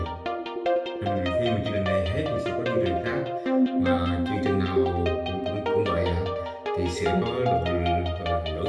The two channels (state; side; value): identical; both; correlation 1.00